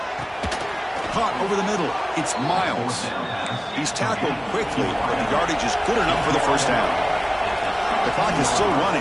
Caught over the middle. It's Miles. He's tackled quickly, but the yardage is good enough for the first down. The clock is still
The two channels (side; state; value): both; identical; correlation 1.00